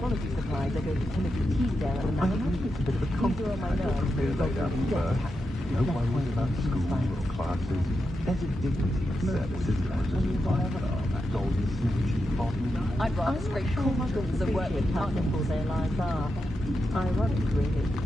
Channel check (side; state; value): both; normal; correlation 0.87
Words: supplies, I go to Timothy Teasdale at the I Manor. think it's a bit of a These are on my nerves. They lay down first. No worries about school or classes. There's a dignity in service, isn't there? That golden snitch bottom. I'd rather scrape cool muggles than work with how muggles. simple their lives are. Ironic, really.